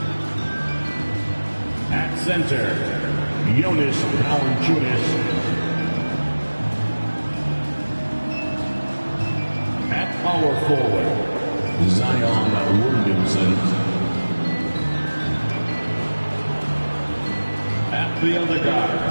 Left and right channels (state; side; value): inverted; both; correlation -1.00